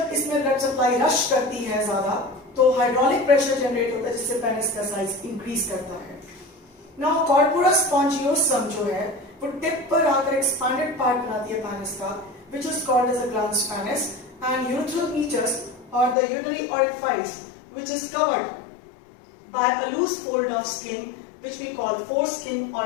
इसमें blood supply rush करती है ज्यादा तो hydraulic pressure generate होता है जिससे पेनिस का साइज इंक्रीज करता है. नाउ कॉर्पोरा स्पॉन्जियोसम जो है वो टिप पर आकर एक्सपांडेड पार्ट बनाती है पेनिस का, which is called as a glans penis, and urethral meatus or the urinary orifice, which is covered by a loose fold of skin which we call foreskin or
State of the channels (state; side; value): drops out; right; at 16.2 s